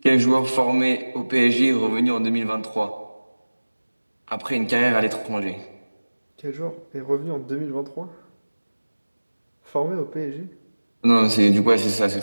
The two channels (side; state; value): both; inverted; correlation -1.00